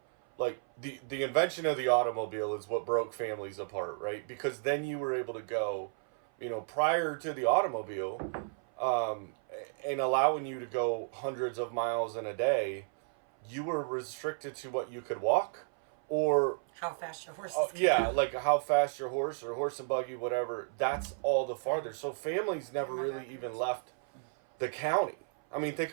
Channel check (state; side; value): silent; left; 56 dB below the other